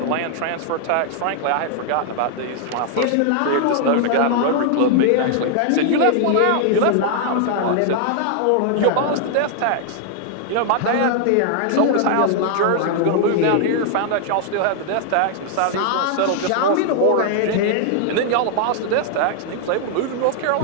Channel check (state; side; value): different; both; correlation 0.00